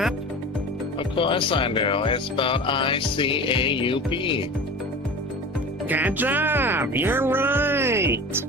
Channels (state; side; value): normal; both; correlation 0.35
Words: Of course I do. It's spelled I-C-A-U-P. Good job. You're right.